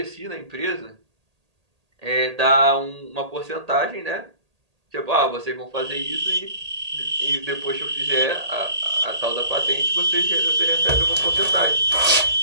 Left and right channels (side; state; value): left; late; 1.8 ms